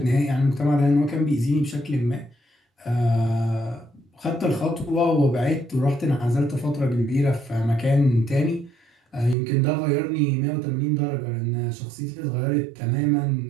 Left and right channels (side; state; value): left; drops out; at 9.3 s